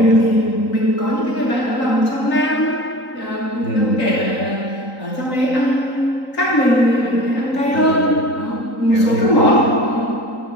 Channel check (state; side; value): late; right; 3.9 ms